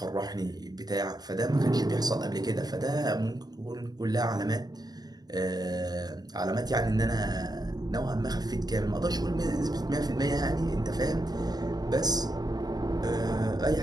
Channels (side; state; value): left; late; 0.19 ms